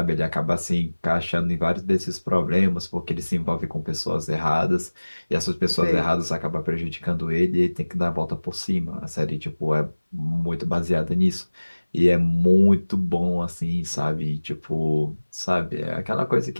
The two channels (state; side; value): inverted; both; correlation -1.00